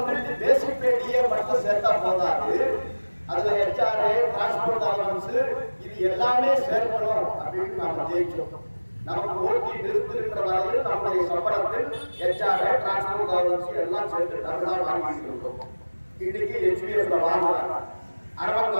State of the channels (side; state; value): both; inverted; correlation -1.00